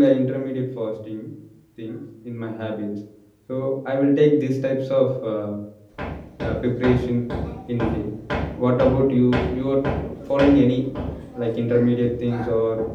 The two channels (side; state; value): both; identical; correlation 1.00